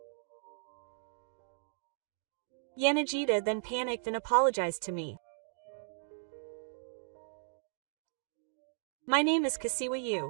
Yanagita then panicked and apologized to me. My name is Kasiwa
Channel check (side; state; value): left; silent; digital silence